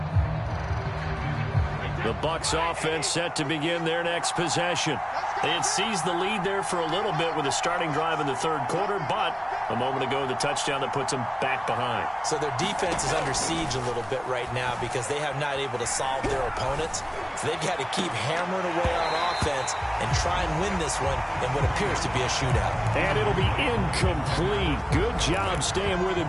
Bucs offense set to begin their next possession. They had seized the lead there for a little bit with a starting drive in the third quarter, but a moment ago the touchdown that puts them back behind. So their defense is under siege a little bit right now because they have not able to solve their opponents. So they've got to keep hammering away on offense and try and win this one in what appears to be a shootout. And it'll be incomplete. Good job staying with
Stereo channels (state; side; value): identical; both; correlation 1.00